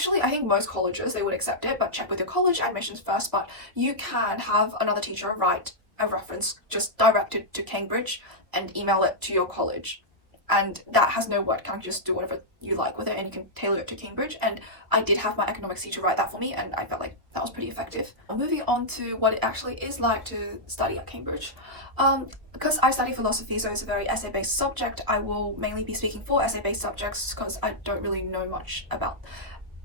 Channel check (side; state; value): left; late; 1.2 ms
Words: I think most colleges, they would accept it, but check with your college admissions first. But you can have another teacher write a reference just directed to Cambridge and email it to your college, and that has no word count. Just do whatever you like with it and you can tailor it to Cambridge. And I did have my economics teacher write that for me and I felt like that was pretty effective. Moving on to what it actually is like to study at Cambridge. Because I study philosophy, so it's a very essay-based subject, I will mainly be speaking for essay-based subjects because I don't really know much about